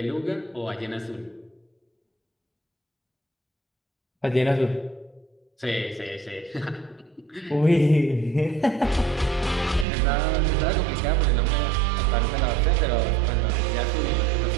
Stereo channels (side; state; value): left; drops out; at 9.9 s